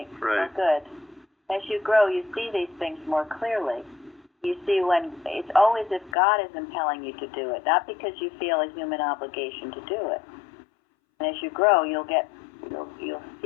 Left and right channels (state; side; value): drops out; right; at 6.2 s